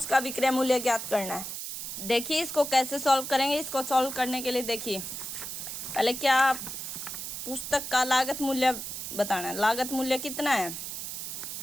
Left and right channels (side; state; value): right; noise; hiss, 6 dB below the sound